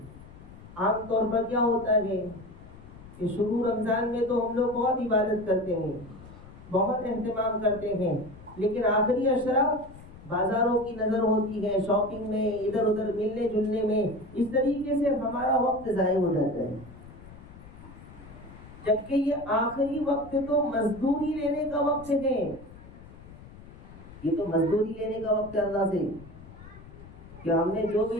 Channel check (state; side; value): noise; left; rumble, 18 dB below the sound